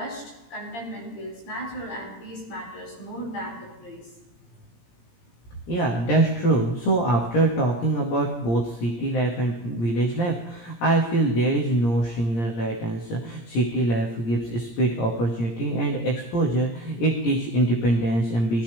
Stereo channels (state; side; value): late; right; 17 ms